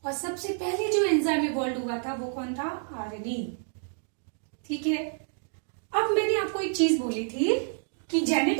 और सबसे पहले जो एंजाइम इवॉल्व हुआ था वो कौन था? आरएनए, ठीक है। अब मैंने आपको एक चीज बोली थी कि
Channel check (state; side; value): silent; left; 59 dB below the other